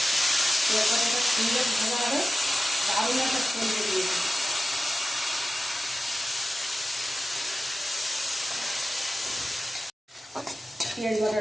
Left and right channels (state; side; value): normal; both; correlation 0.94